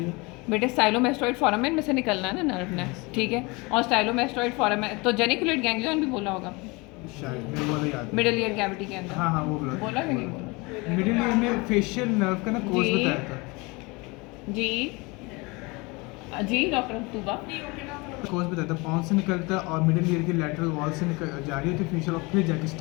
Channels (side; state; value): right; quieter; 26.0 dB